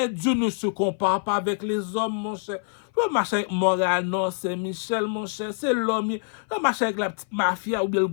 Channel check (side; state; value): right; silent; 57 dB below the other